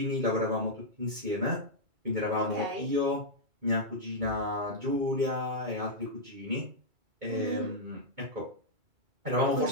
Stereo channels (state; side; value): late; left; 2.3 ms